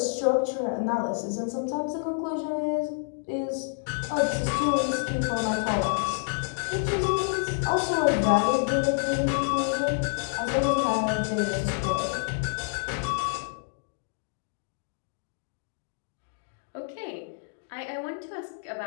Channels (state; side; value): silent; right; digital silence